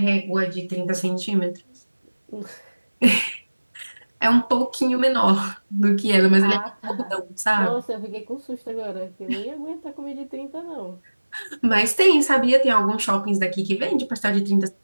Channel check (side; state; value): both; inverted; correlation -1.00